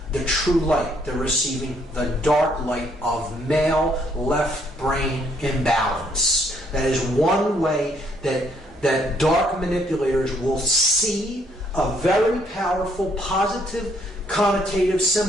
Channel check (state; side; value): normal; both; correlation 0.68